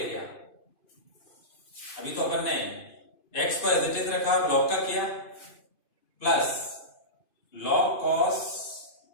गया। अभी तो अपन ने x को एज इट इज रखा और log का किया, plus log cos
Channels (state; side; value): late; right; 2.5 ms